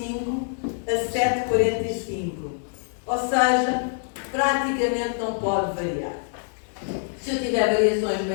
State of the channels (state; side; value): silent; right; 62 dB below the other